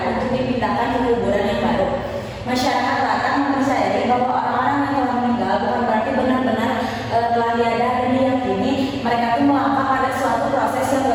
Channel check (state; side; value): identical; both; correlation 1.00